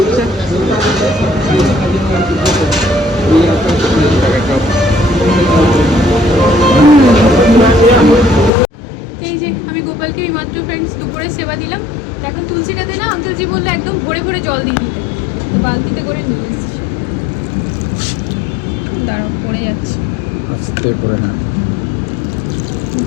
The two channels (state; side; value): drops out; right; at 8.5 s